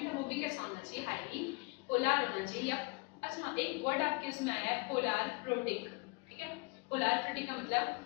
है वो भी कैसा होना चाहिए, हाईली पोलर होना चाहिए। या अच्छा एक वर्ड आपके उसमें आया है पोलर प्रोटिक, ठीक है। पोलर प्रोटिक का मतलब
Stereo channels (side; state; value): right; quieter; 30.7 dB